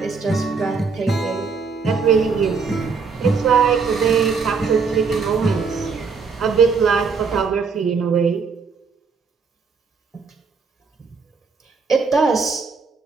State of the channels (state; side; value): quieter; left; 5.1 dB